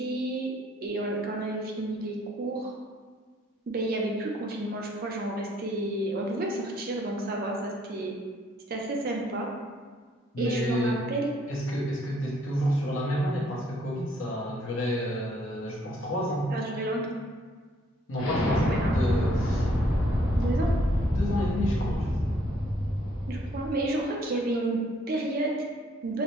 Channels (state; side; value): normal; both; correlation 0.65